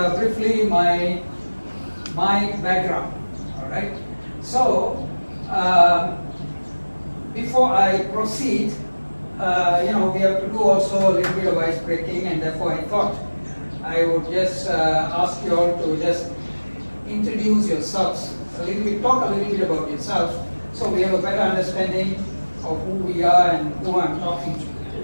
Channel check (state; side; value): inverted; both; correlation -1.00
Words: briefly my background. All right, so before I proceed, we have to do also a little bit of ice breaking, and therefore I thought I would just ask you all to just introduce yourselves a little bit, talk a little bit about yourselves, so we have a better understanding of who we are and who I'm talking to.